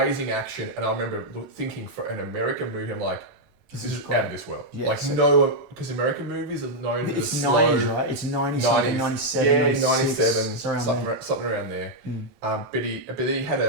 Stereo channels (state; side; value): normal; both; correlation -0.03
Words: action. And I remember thinking for an American movie, I'm like, this is out of this world. Yeah, because American movies are known for the slow... It's 90s, right? It's 90, 97, yeah, 97, something around there. But he had